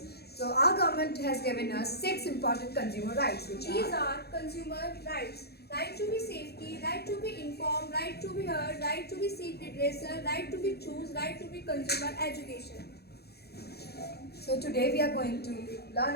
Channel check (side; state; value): right; late; 0.47 ms